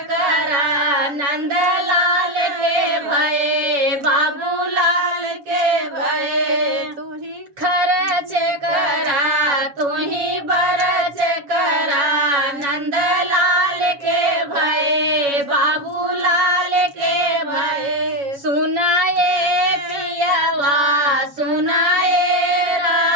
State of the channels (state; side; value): late; left; 7.0 ms